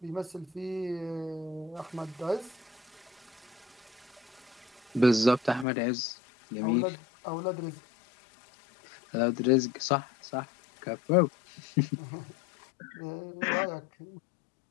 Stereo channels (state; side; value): drops out; right; at 5.7 s